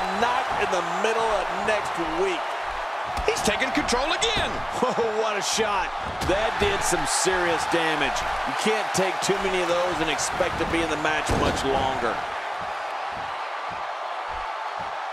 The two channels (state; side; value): identical; both; correlation 1.00